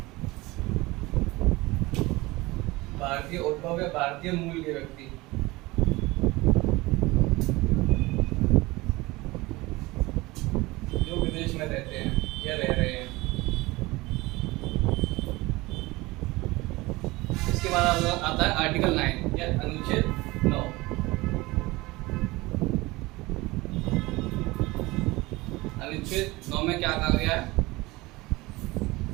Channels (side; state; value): left; quieter; 21.4 dB